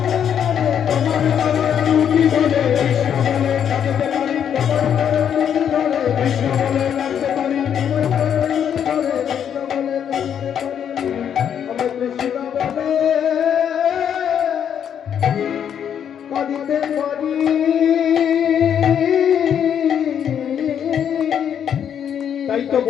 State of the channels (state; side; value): quieter; right; 8.7 dB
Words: তোমার চরণ দুটি ধরে কৃষ্ণ বলে কাঁদিতে পারি, কৃষ্ণ বলে কাঁদতে পারি, কাঁদিতে পারি, তাই তো